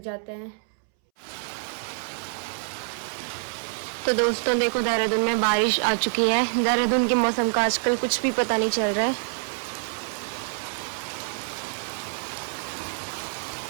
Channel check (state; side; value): silent; left; 61 dB below the other